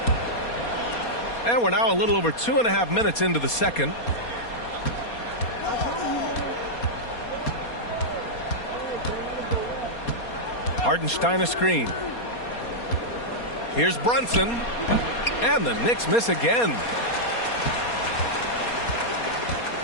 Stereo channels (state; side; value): late; right; 4.2 ms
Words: And we're now a little over 2.5 minutes into the second. Hartenstein a screen. Here's Brunson. And the Knicks miss again.